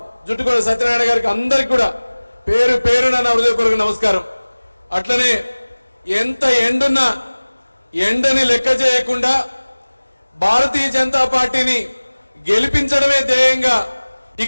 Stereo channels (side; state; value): both; inverted; correlation -1.00